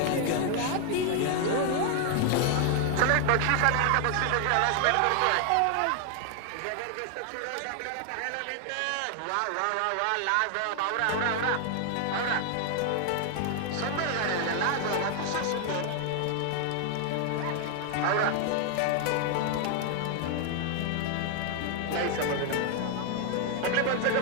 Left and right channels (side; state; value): both; different; correlation 0.00